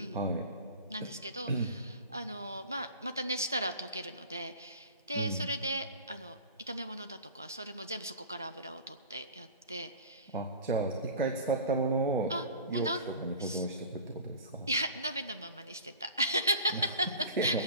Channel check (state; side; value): inverted; both; correlation -0.38